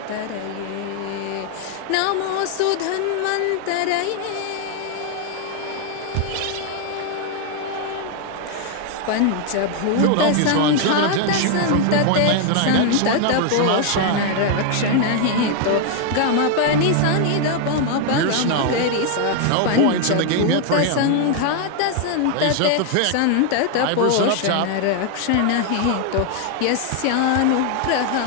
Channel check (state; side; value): different; both; correlation 0.00